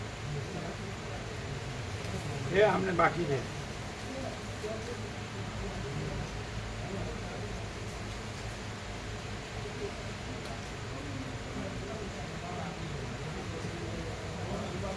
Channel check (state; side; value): identical; both; correlation 1.00